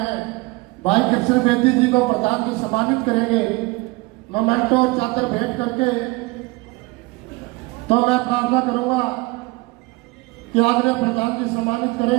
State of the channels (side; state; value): left; quieter; 23.5 dB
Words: भाई कृष्ण बेदी जी को प्रधान जी सम्मानित करेंगे मोमेंटो और चादर भेंट करके। तो मैं प्रार्थना करूंगा कि आदरणीय प्रधान जी सम्मानित